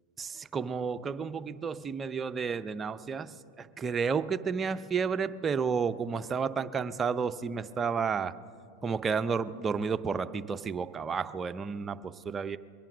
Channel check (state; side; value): quieter; left; 5.5 dB